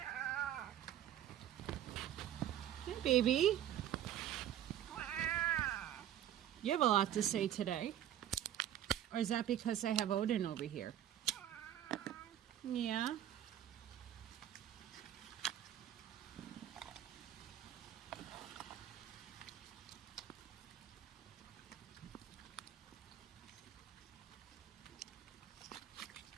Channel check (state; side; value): quieter; left; 11.3 dB